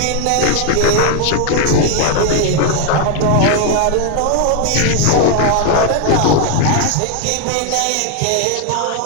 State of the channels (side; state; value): both; different; correlation 0.01